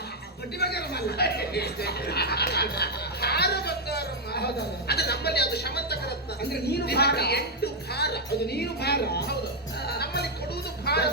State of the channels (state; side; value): normal; both; correlation 0.00